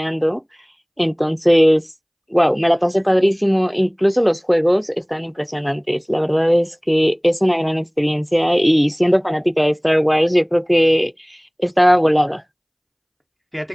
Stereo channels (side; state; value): both; identical; correlation 1.00